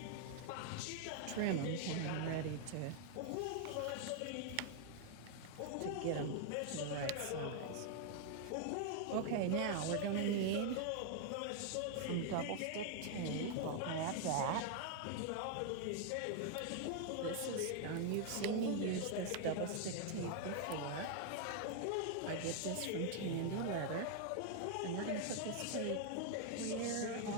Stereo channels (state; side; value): different; both; correlation 0.00